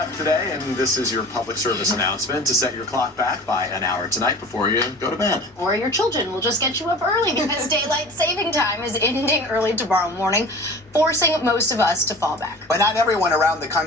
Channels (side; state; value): both; normal; correlation 0.40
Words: today, and this is your public service announcement to set your clock back by an hour tonight before you go to bed. Or your children will just get you up early because daylight saving time is ending early tomorrow morning, forcing most of us to fall back. But not everyone around the